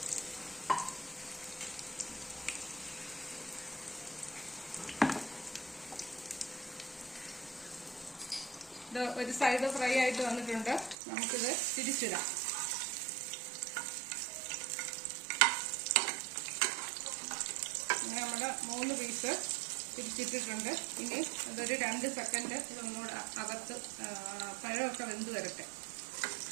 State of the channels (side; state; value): left; drops out; at 11.0 s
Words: ഇത് ഒരു സൈഡ് ഫ്രൈ ആയിട്ട് വന്നിട്ടുണ്ട്. നമുക്കിത് തിരിച്ചിടാം. ഇങ്ങനെ നമ്മുടെ 3 പീസ് തിരിച്ചിട്ടിട്ടുണ്ട്. ഇനി അതൊരു 2 സെക്കൻഡ് ഇതൊന്നുകൂടെ അകത്ത് പഴമൊക്കെ വെന്ത് വരട്ടെ.